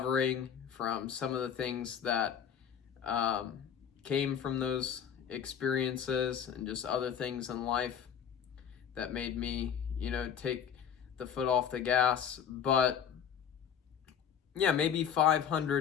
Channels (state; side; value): quieter; right; 8.3 dB